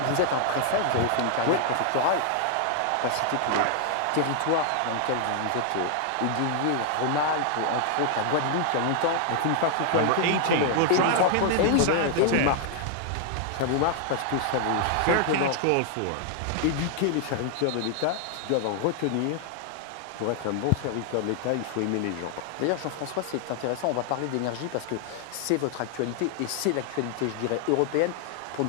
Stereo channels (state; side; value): different; both; correlation 0.00